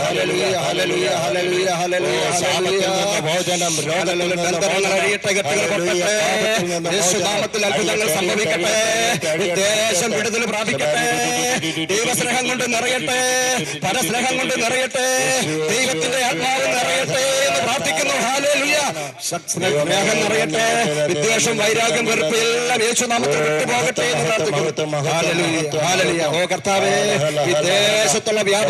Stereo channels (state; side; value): identical; both; correlation 1.00